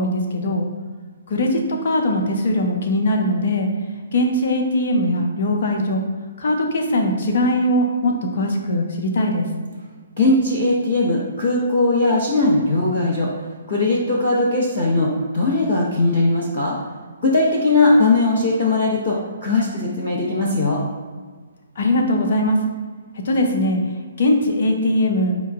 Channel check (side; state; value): both; inverted; correlation -0.50